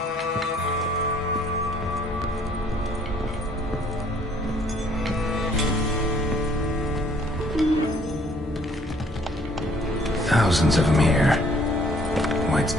Thousands of them here. White's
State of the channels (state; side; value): normal; both; correlation 0.61